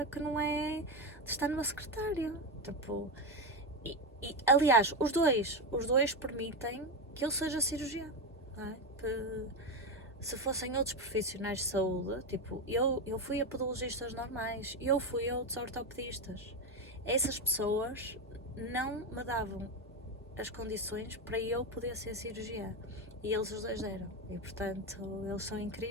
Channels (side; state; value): both; normal; correlation 0.13